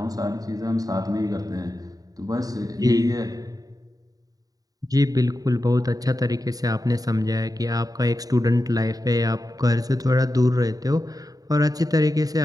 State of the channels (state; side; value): late; left; 0.18 ms